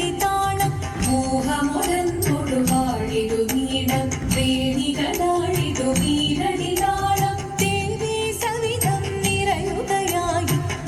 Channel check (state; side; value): identical; both; correlation 1.00